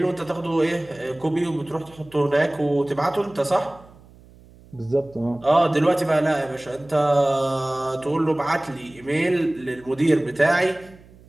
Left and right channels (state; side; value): noise; right; hum, 24 dB below the sound